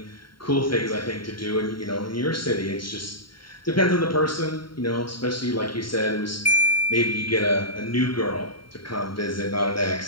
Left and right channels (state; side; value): late; right; 0.73 ms